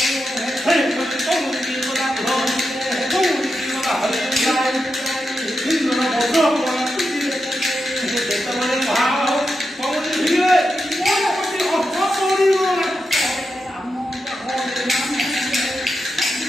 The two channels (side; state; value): both; normal; correlation 0.88